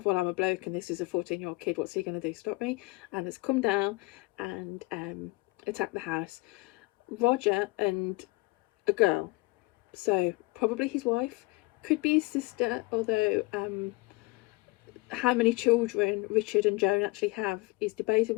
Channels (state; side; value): quieter; right; 23.8 dB